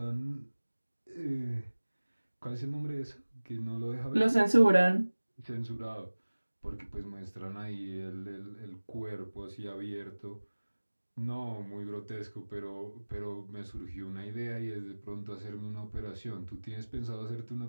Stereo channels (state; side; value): inverted; both; correlation -1.00